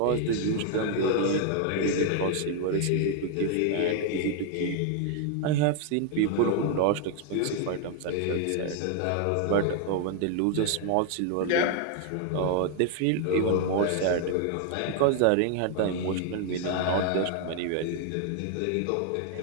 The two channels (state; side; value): different; both; correlation 0.00